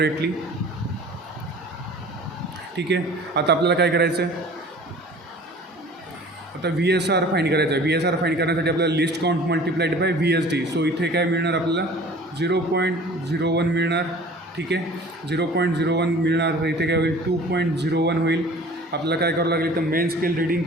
ठीक आहे. आता आपल्याला काय करायचं आहे आता VSR फाइंड करायचं आहे. VSR फाइंड करण्यासाठी आपल्याला list count multiplied by VSD. So इथे काय मिळणार आपल्याला 0.01 मिळणार. ठीक आहे. 0.01 मिळणार, तर इथे काय होईल 2.01 होईल. आपल्याला काय करावं लागेल तर main scale reading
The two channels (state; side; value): normal; both; correlation 0.45